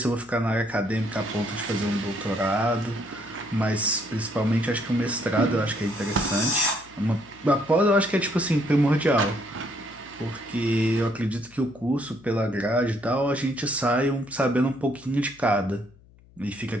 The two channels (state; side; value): noise; left; hum, 26 dB below the sound